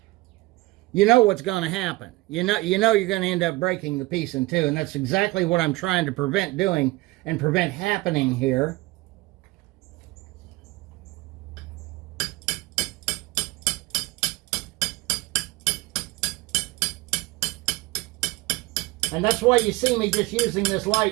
you know what's going to happen. You know you're going to end up breaking the piece in two, and that's exactly what I'm trying to prevent doing and prevent happening here. And that's why you see me just using this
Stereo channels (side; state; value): left; quieter; 20.8 dB